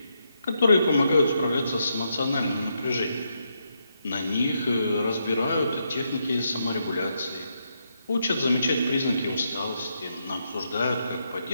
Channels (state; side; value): inverted; both; correlation -0.80